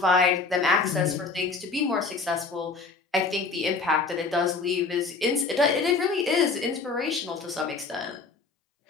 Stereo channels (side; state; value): right; quieter; 4.3 dB